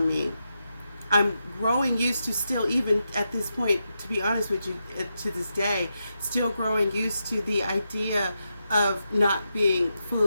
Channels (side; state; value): both; inverted; correlation -0.86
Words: me, I'm growing used to, still even at this point, to be honest with you, to this day, still growing used to the idea of not being